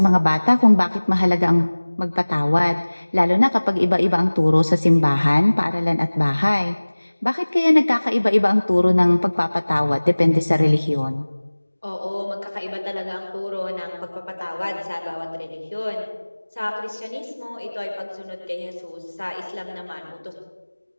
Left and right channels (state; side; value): inverted; both; correlation -1.00